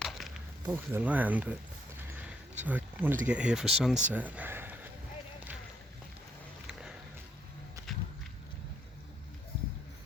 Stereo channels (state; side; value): normal; both; correlation 0.72